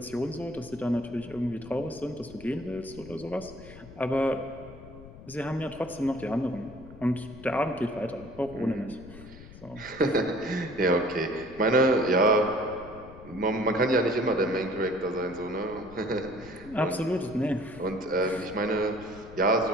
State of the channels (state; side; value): noise; left; rumble, 17 dB below the sound